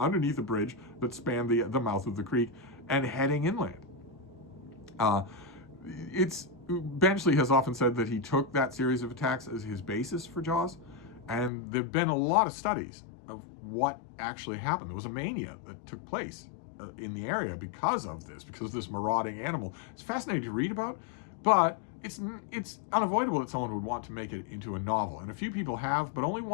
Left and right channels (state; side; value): drops out; right; at 11.5 s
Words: a bridge that spanned the mouth of the creek and heading inland. Benchley has often said that he took that series of attacks as his basis for Jaws, and there have been a lot of studies of what actually happened. There was a mania that took place in the area because of this marauding animal. It's fascinating to read about, but it's unavoidable that someone would want to make it into a novel, and a few people have, but only